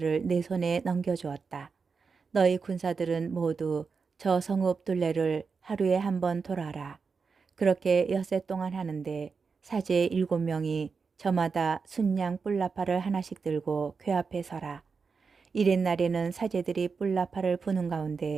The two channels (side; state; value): left; quieter; 5.1 dB